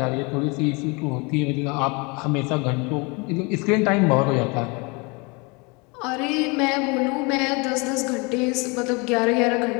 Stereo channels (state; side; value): quieter; right; 29.1 dB